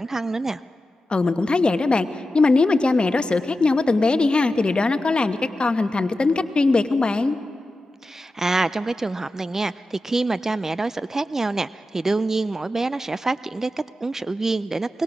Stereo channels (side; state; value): both; normal; correlation 0.92